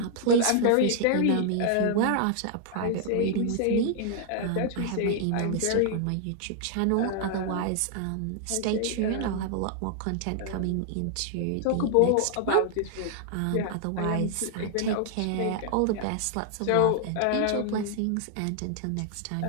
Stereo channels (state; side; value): different; both; correlation 0.00